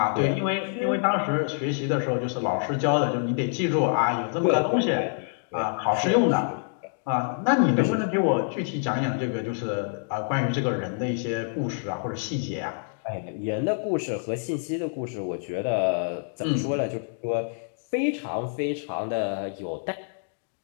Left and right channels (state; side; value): silent; right; 60 dB below the other